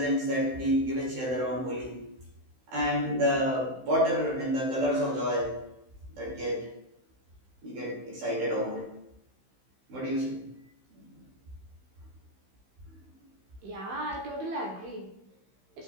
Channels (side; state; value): left; late; 15 ms